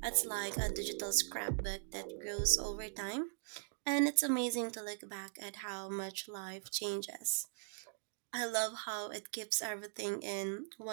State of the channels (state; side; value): silent; left; digital silence